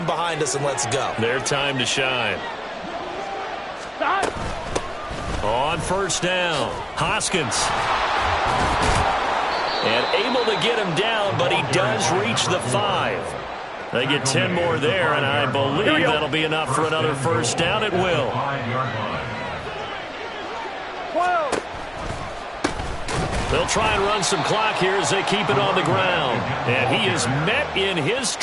behind us and let's go. Their time to shine. On first down, Hoskins. And able to get him down, but he does reach the 5. They get 10 more there, and I believe that'll be enough for another first down. It will. 12. They'll try and run some clock here as they keep it on the ground. And he is met in his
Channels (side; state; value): both; identical; correlation 1.00